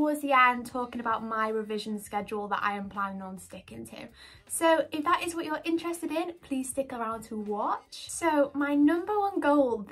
the end talking about my revision schedule that I am planning on sticking to. So if that is what you're interested in, please stick around to watch. So my number one goal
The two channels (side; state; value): both; identical; correlation 1.00